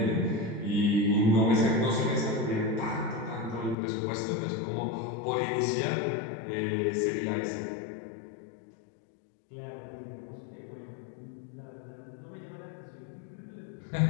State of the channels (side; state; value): right; drops out; at 3.8 s